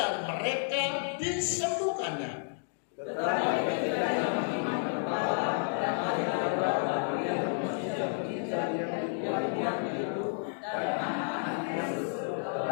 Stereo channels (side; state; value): right; silent; digital silence